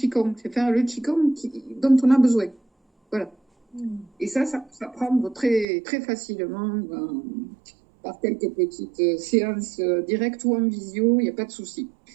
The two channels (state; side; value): drops out; left; at 5.7 s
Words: c'est faire le Qigong dont on a besoin. Voilà. Et ça prend très, très facilement par quelques petites séances directes ou en visio, il n'y a pas de souci.